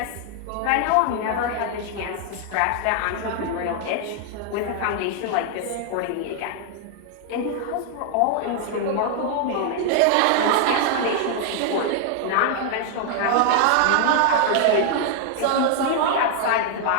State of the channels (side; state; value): both; different; correlation 0.00